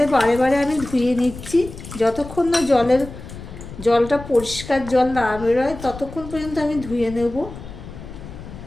বারে বারে আমি ধুয়ে নিচ্ছি, যতক্ষণ না জলটা পরিষ্কার জল না বেরোয় ততক্ষণ পর্যন্ত আমি ধুয়ে নেব।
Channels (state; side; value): noise; left; rumble, 13 dB below the sound